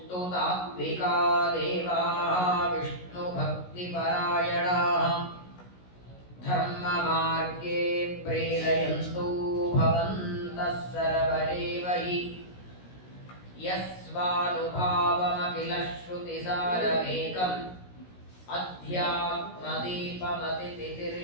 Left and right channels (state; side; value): late; right; 16 ms